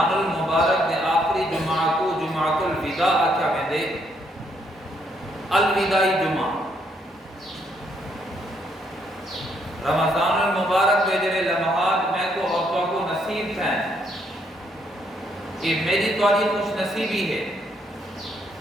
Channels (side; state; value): both; normal; correlation 0.72